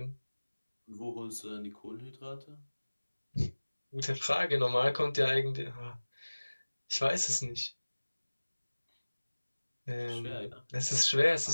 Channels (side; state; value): both; inverted; correlation -1.00